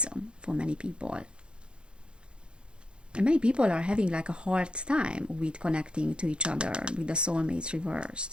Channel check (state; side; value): late; left; 0.053 ms